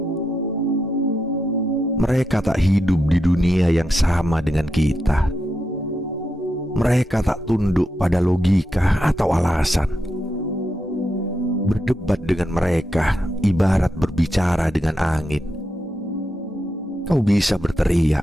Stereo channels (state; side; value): normal; both; correlation 0.85